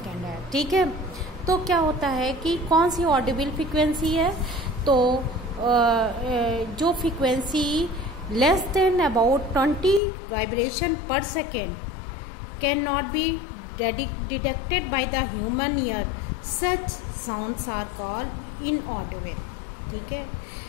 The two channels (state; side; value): drops out; right; at 10.0 s